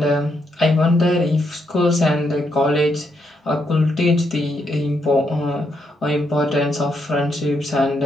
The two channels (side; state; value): both; normal; correlation 0.78